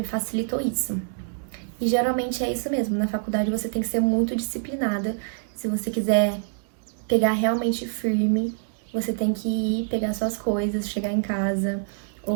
facilitou isso. E geralmente é isso mesmo, na faculdade você tem que ser muito disciplinada. Se você quiser pegar realmente firme, você tem que ir pegar suas coisas, chegar em casa,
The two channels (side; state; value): left; silent; digital silence